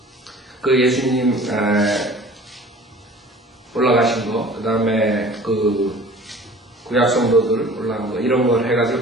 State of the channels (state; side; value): normal; both; correlation 0.46